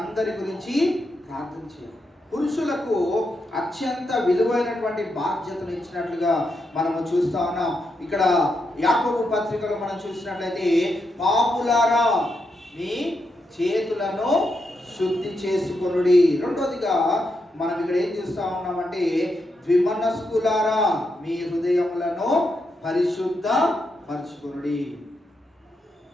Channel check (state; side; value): normal; both; correlation 0.83